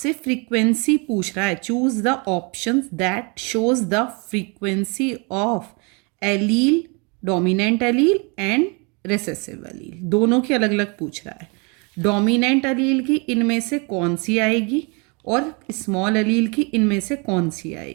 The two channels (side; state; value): left; quieter; 31.7 dB